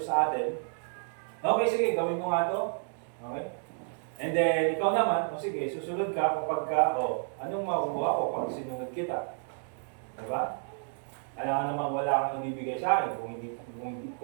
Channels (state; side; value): silent; left; 57 dB below the other